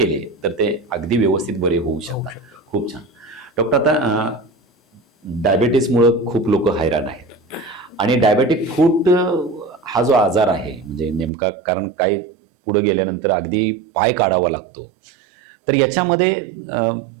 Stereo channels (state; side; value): drops out; left; at 11.3 s